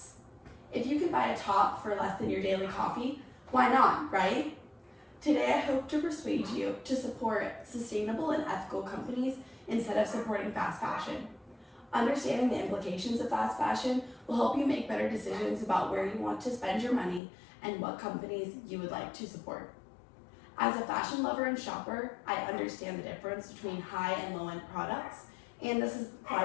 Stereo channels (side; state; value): right; drops out; at 17.2 s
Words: If you can buy a top for less than your daily coffee, why not, right? Today I hope to persuade you to support sustainable and ethical companies instead of supporting fast fashion. Understanding the implications of fast fashion will help you make better decisions about where you want to spend your money and what companies you would like to support. As a fashion lover and shopper, I understand the difference between high and low-end products and the